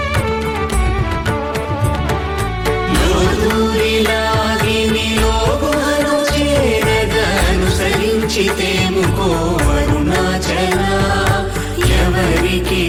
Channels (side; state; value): both; identical; correlation 1.00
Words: लोदूरिलागि निलोगुहनु చేరదనుసరించితేముకో అరుణాచల ఎవరికి